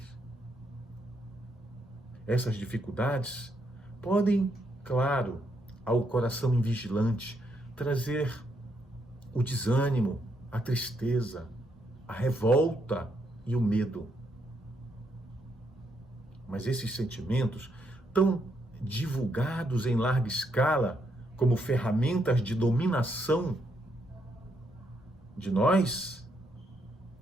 Essas dificuldades podem, claro, ao coração invigilante, trazer o desânimo, a tristeza, a revolta e o medo. Mas esses sentimentos, tão divulgados em larga escala como ferramentas de dominação de nós,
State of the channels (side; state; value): both; normal; correlation 0.76